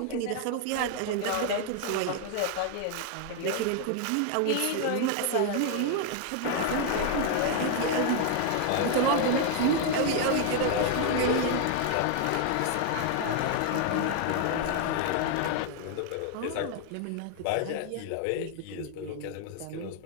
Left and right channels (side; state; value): both; different; correlation 0.00